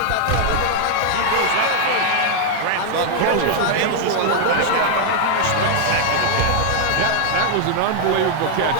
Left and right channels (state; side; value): different; both; correlation 0.00